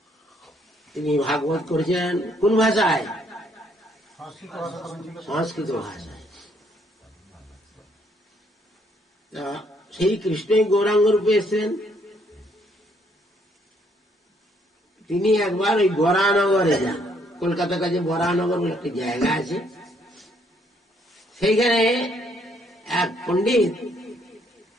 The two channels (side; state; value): both; normal; correlation 0.69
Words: তিনি ভাগবত করেছেন কোন ভাষায়? সংস্কৃত ভাষায়। সেই কৃষ্ণই গৌরাঙ্গ রূপে এসেছেন। তিনি একবার ওই বরানগরে যান, কলকাতার কাছে বরানগর বলে একটা জায়গা আছে, সেইখানে এক পণ্ডিত,